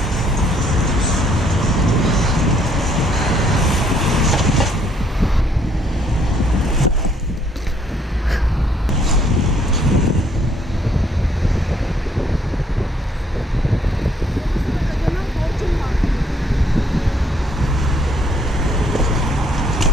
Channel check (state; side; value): normal; both; correlation 0.66